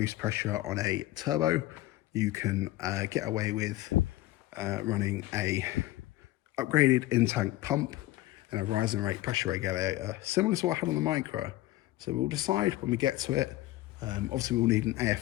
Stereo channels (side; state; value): right; quieter; 16.7 dB